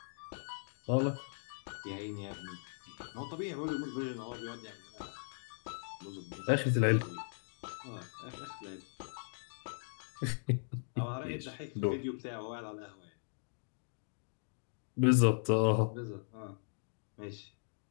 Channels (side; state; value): right; silent; digital silence